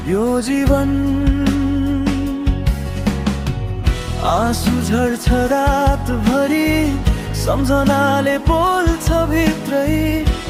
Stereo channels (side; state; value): both; identical; correlation 1.00